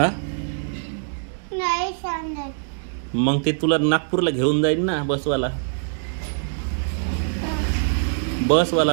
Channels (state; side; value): silent; left; 63 dB below the other